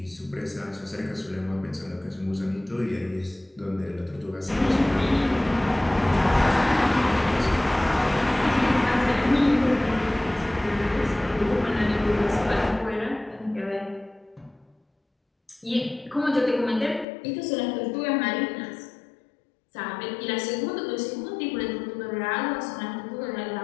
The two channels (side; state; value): right; drops out; at 17.1 s